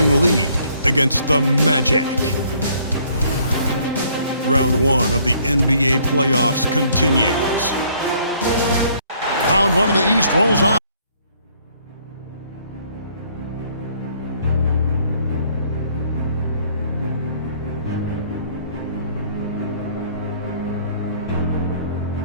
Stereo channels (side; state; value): both; inverted; correlation -0.63